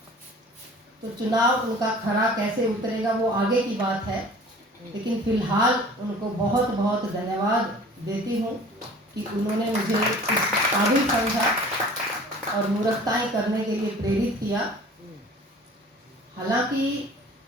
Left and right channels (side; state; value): both; normal; correlation 0.46